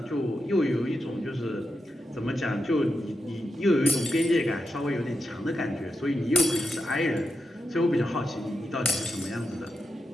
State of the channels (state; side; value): normal; both; correlation 0.88